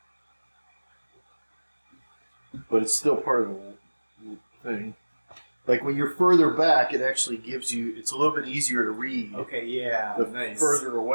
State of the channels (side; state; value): both; inverted; correlation -1.00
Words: But it's still part of the thing. Like when you're further back, it actually gives you. It's a little bit easier to read Okay, yeah. the nice. further